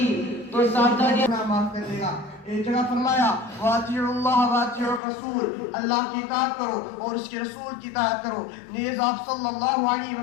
تو صاحبزادیاں معاف کر دے گا. ایک جگہ فرمایا وَأَطِيعُوا اللَّهَ وَأَطِيعُوا الرَّسُولَ اللہ کی اطاعت کرو اور اس کے رسول کی اطاعت کرو. نیز آپ صلی اللہ علیہ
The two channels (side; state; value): right; drops out; at 5.0 s